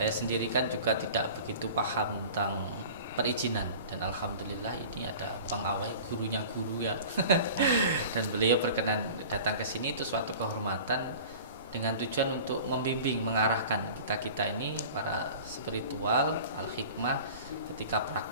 sendiri kan juga tidak begitu paham tentang perizinan dan alhamdulillah ini ada pengawai gurunya guru ya. Dan beliau berkenan datang ke sini, itu suatu kehormatan dengan tujuan untuk membimbing, mengarahkan kita ini para spiritual al-hikmah ketika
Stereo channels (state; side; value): inverted; both; correlation -0.41